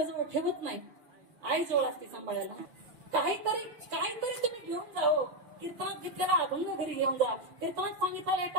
ठेवत नाही, आई जवळ असते सांभाळायला. काहीतरी तुम्ही घेऊन जाओ. कीर्तनात घेतलेला अभंग घरी घेऊन जा, कीर्तनात सांगितलेला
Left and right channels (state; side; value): late; left; 6.7 ms